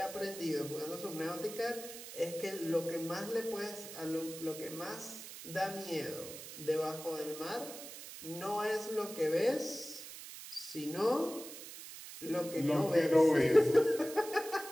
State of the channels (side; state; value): right; noise; hiss, 12 dB below the sound